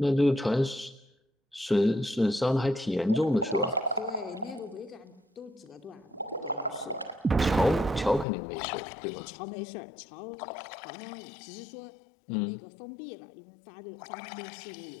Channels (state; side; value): drops out; right; at 8.2 s